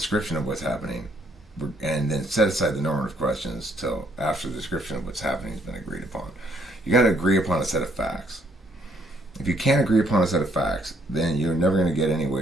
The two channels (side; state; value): both; normal; correlation 0.68